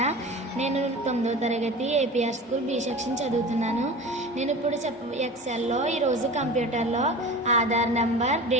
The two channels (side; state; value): both; normal; correlation 0.35